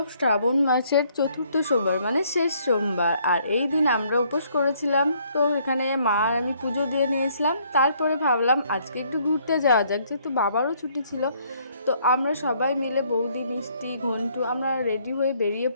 শ্রাবণ মাসের চতুর্থ সোমবার মানে শেষ সোমবার। আর এই দিন আমরা উপোস করেছিলাম। তো এখানে মা আর আমি পুজো দিয়ে নিয়েছিলাম। তারপরে ভাবলাম আজকে একটু ঘুরতে যাওয়া যাক, যেহেতু বাবারও ছুটি ছিল। তো আমরা সবাই মিলে বৌদি, মিষ্টি, ঘন্টু আমরা রেডি হয়ে বেরিয়ে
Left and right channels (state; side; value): inverted; both; correlation -0.66